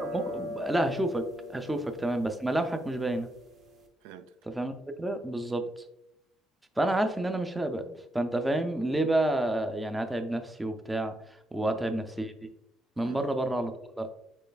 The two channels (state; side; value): normal; both; correlation 0.82